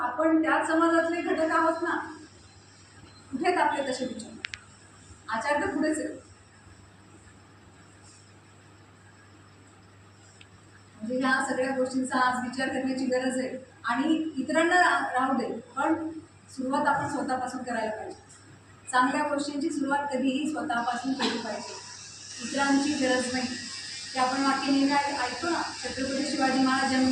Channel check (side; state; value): both; identical; correlation 1.00